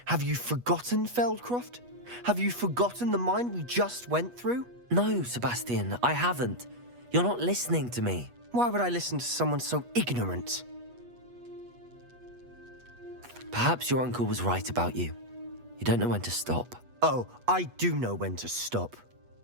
Have you forgotten Feldcroft? Have you forgotten the mine we just went through? No, Sebastian, I haven't. You're not listening to me. Why would I listen to someone so ignorant? Perhaps your uncle was right about you. You don't know when to stop. Oh, I do know when to stop.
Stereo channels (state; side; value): late; left; 8.3 ms